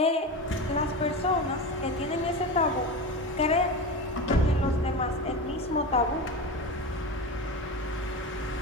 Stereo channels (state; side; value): normal; both; correlation 0.25